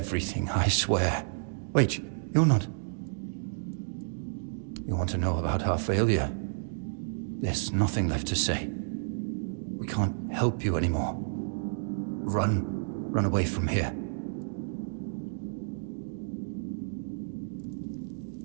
I swear. Wait, you're not... You want to know about our failure? There's nothing left to say. We can't help you anymore. Run. Run away from here.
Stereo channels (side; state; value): left; silent; digital silence